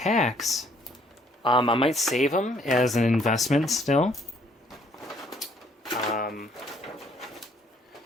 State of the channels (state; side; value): normal; both; correlation 0.63